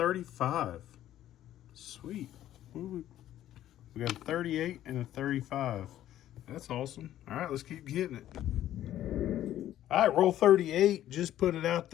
Sweet. We got a 38 and a 35. That's awesome. All right, let's keep getting it. All right, roll 38. Just put it out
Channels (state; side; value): quieter; right; 12.5 dB